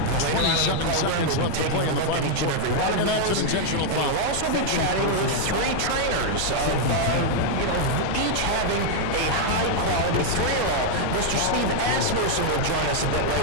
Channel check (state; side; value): different; both; correlation 0.00